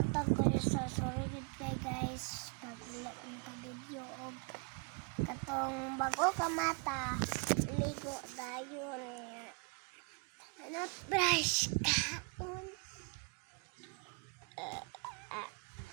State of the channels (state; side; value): quieter; left; 35.0 dB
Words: kayo sa sorry good kay guys pag wala ka video og katong bago ka mata ligo dayon niya. Ano brush kaon?